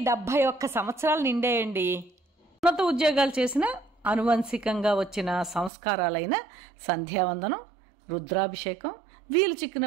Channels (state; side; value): drops out; left; at 5.7 s